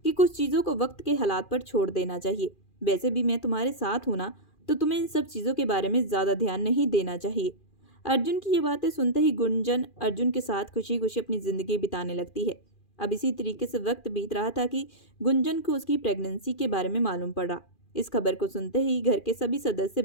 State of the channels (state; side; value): late; right; 2.4 ms